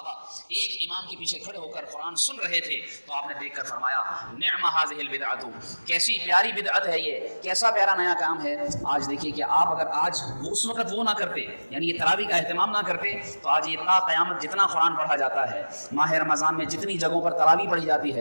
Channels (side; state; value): both; inverted; correlation -1.00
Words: ایک امام کے پیچھے کھڑے ہو کر قرآن سن رہے تھے تو آپ نے دیکھ کر فرمایا نعم هذه البدعۃ, کیسی پیاری بدعت ہے یہ, کیسا پیارا نیا کام ہے. آج دیکھیے کہ آپ اگر آج اس وقت وہ نہ کرتے یعنی یہ تراویح کا اہتمام نہ کرتے تو آج یہ تا قیامت جتنا قرآن پڑھا جاتا ہے, ماہ رمضان میں جتنی جگہوں پر تراویح پڑھی جاتی